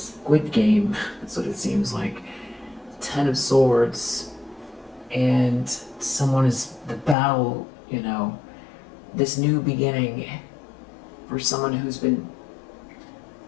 Squid Game. That's what it seems like. 10 of Swords, and someone is the battle. This new beginning for someone who's been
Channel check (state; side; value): drops out; right; at 7.2 s